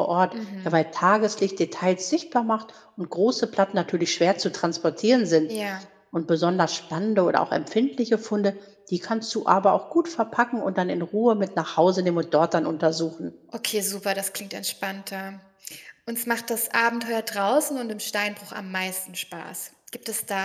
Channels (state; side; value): identical; both; correlation 1.00